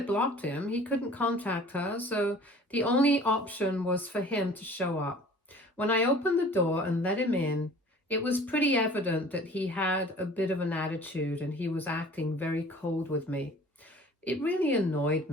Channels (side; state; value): both; normal; correlation 0.48